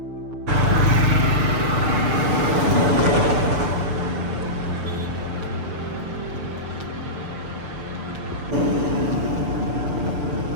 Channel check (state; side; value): late; left; 6.5 ms